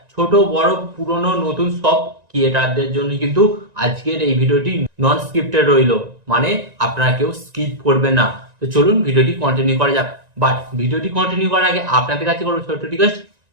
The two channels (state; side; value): late; left; 1.9 ms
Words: ছোট বড় পুরনো নতুন সব ক্রিয়েটারদের জন্য কিন্তু আজকের এই ভিডিওটি নন স্ক্রিপ্টেড রইল, মানে আপনারা কেউ স্কিপ করবেন না। তো চলুন ভিডিওটি কন্টিনিউ করা যাক। বাট ভিডিওটি কন্টিনিউ করার আগে আপনাদের কাছে করবো ছোট্ট রিকোয়েস্ট,